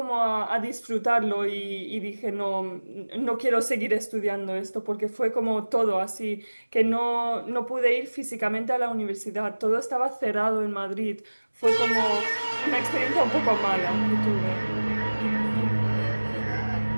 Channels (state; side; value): inverted; both; correlation -1.00